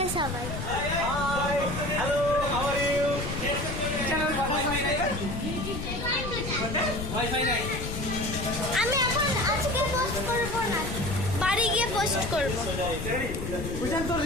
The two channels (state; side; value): noise; left; rumble, 5 dB below the sound